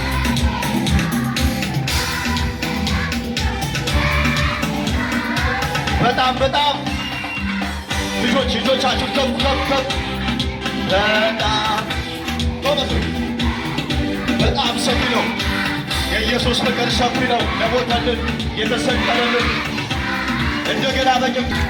በጣም ልጆቻችሁ ከፍ ከፍ ከፍ። በጣም ሰፊ ነው የኢየሱስ ፍቅር፣ ሰፊ ነው። ለሞተልን የተሰቀለልን እንደገና በጭም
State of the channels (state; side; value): identical; both; correlation 1.00